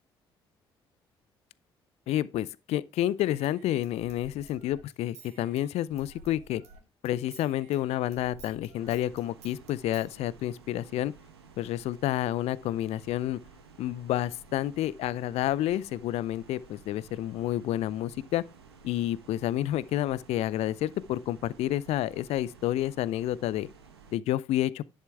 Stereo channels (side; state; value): right; quieter; 12.8 dB